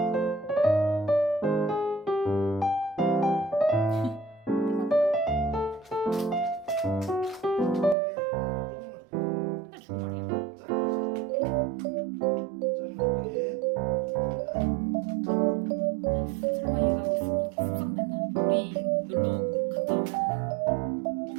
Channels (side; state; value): left; drops out; at 8.0 s